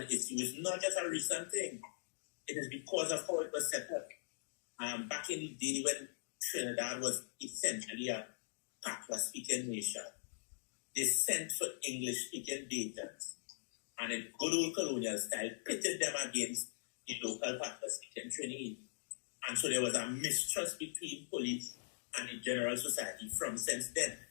issue is not just a recent thing. It is because of how it was set up. Back in the day when Trinidad was essentially a Patois-speaking nation, they sent for English-speaking agents, and in good old colonial style, pitted them against the local Patois-speaking Trinidad. And so there was a mistrust between police and the general society from since then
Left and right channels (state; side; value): silent; right; digital silence